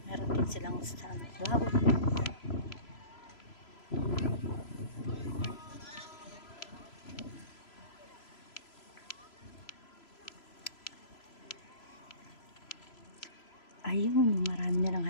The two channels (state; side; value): late; right; 3.0 ms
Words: Meron din silang sunflower. Ayun, marami nilang